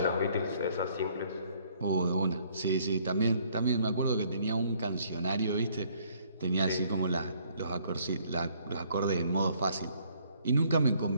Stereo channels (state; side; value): inverted; both; correlation -0.64